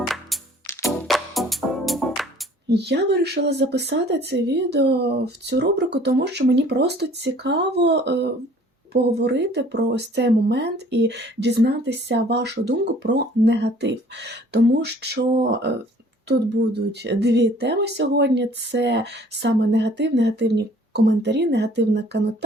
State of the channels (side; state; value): both; normal; correlation 0.54